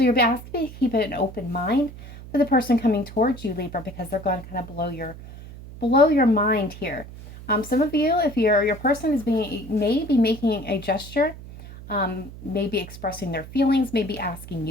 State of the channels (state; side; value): noise; right; hum, 15 dB below the sound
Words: you're asked to keep an open mind for the person coming towards you, Libra, because they're going to kind of blow your mind here. Some of you, if your person may be making a gesture, maybe expressing their feelings, maybe asking